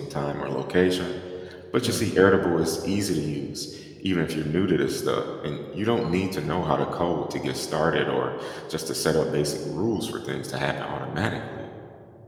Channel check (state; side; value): identical; both; correlation 1.00